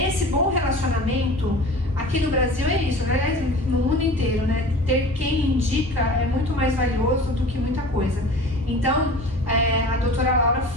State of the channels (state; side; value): normal; both; correlation 0.39